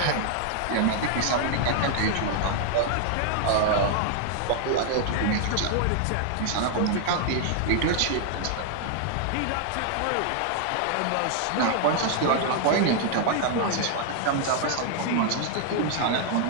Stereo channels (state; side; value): different; both; correlation 0.00